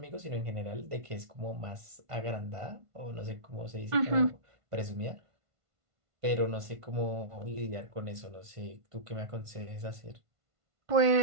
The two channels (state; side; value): late; left; 1.5 ms